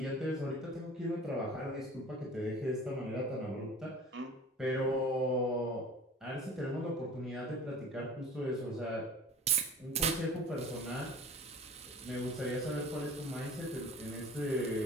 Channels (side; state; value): both; normal; correlation 0.43